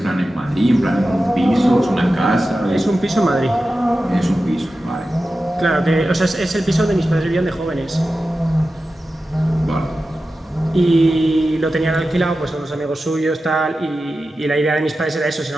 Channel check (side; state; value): both; normal; correlation 0.93